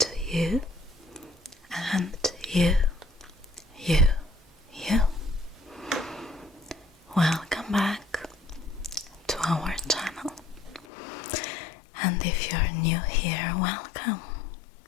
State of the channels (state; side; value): drops out; right; at 10.9 s